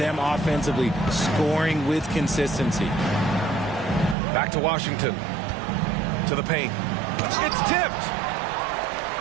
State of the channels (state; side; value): drops out; left; at 4.2 s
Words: offensively, scoring with consistency. Back to Washington. To the paint. It's tipped.